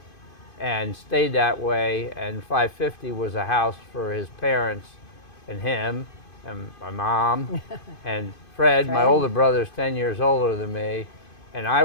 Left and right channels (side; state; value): right; late; 2.5 ms